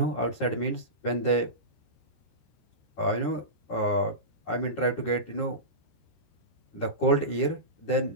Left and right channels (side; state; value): right; late; 13 ms